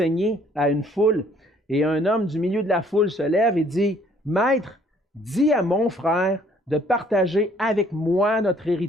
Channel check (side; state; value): both; normal; correlation 0.60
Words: à une foule. Et un homme du milieu de la foule se lève et dit, « Maître, dis à mon frère de partager avec moi notre